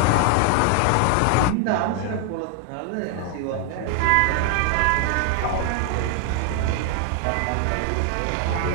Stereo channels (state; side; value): different; both; correlation 0.00